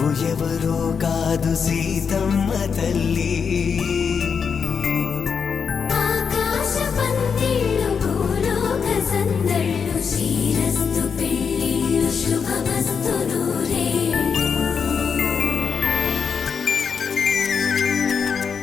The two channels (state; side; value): quieter; right; 6.3 dB